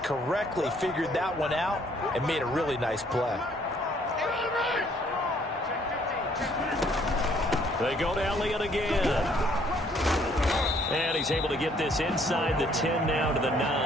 figured that one out and made a really nice play. They go to Elliott again. And he's able to get this inside the 10 now to the 9.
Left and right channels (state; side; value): normal; both; correlation 0.64